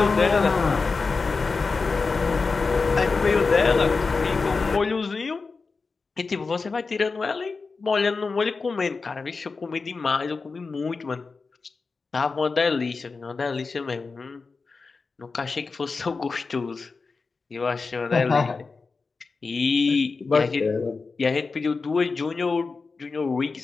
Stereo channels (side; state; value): right; quieter; 4.3 dB